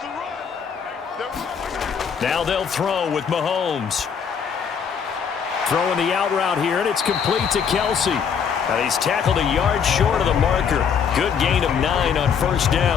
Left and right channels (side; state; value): right; quieter; 7.0 dB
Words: Now they'll throw with Mahomes. Throwing the out route here, and it's complete to Kelce. And he's tackled a yard short of the marker. Good gain of 9 on first